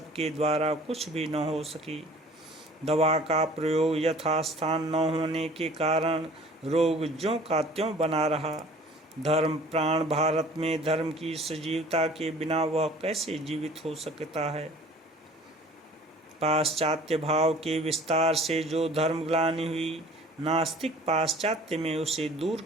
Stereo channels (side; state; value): both; normal; correlation 0.49